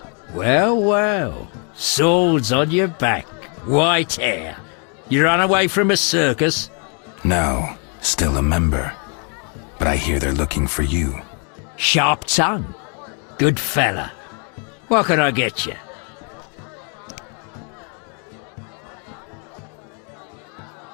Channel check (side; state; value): right; quieter; 38.5 dB